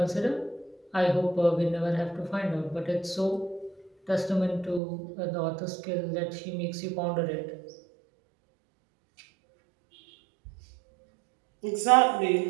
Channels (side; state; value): left; drops out; at 4.8 s